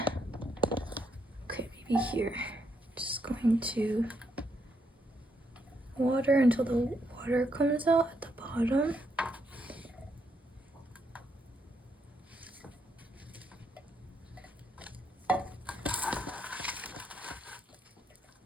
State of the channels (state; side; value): normal; both; correlation 0.77